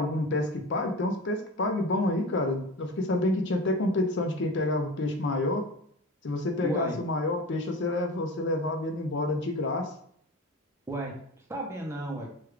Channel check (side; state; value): both; normal; correlation 0.32